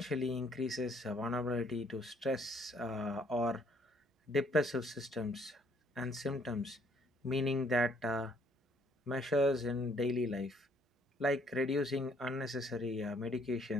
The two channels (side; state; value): both; normal; correlation 0.64